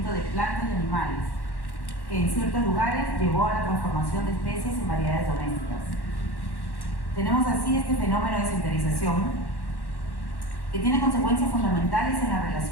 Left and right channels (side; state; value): right; late; 1.1 ms